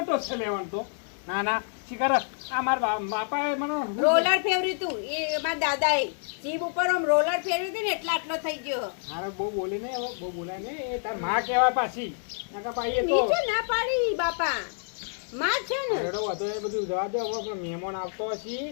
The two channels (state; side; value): silent; right; digital silence